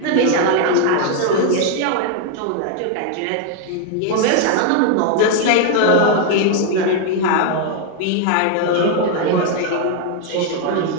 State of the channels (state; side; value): different; both; correlation 0.00